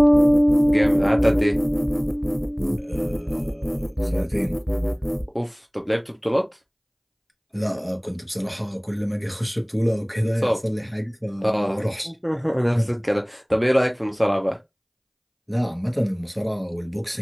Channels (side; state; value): both; identical; correlation 1.00